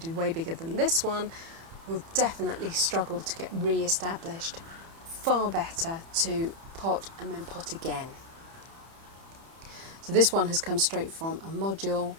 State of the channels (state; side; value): late; left; 30 ms